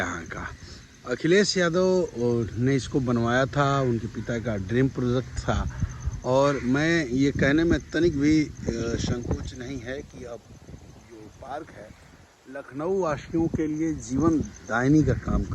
का। अखिलेश यादव ने इसको बनवाया था, उनके पिता का ड्रीम प्रोजेक्ट था। और मैं ये कहने में तनिक भी संकोच नहीं है कि अब जो पार्क है लखनऊ वासियों के लिए जीवन दायिनी का काम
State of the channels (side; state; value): both; identical; correlation 1.00